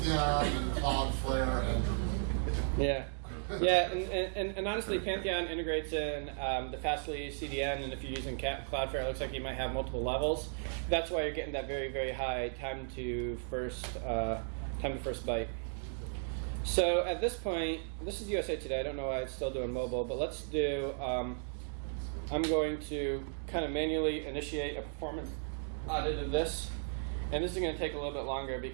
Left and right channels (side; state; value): left; silent; digital silence